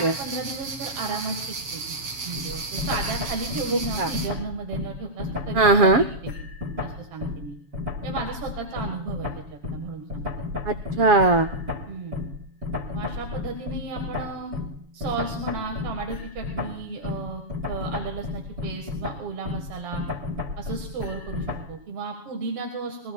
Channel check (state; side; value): late; left; 7.2 ms